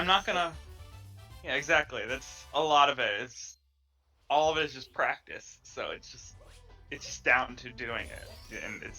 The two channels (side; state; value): both; identical; correlation 1.00